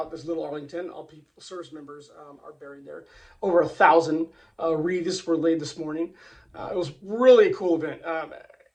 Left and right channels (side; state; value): both; identical; correlation 1.00